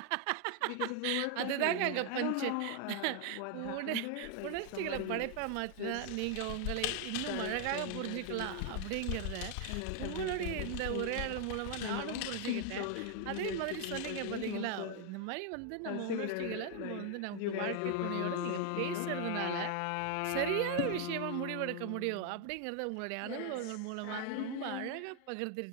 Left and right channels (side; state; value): both; different; correlation 0.00